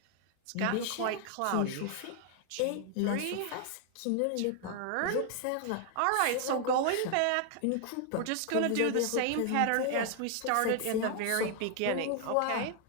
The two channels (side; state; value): both; different; correlation 0.00